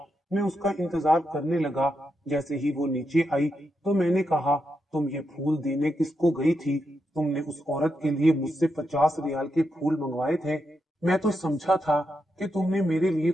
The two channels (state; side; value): normal; both; correlation 0.84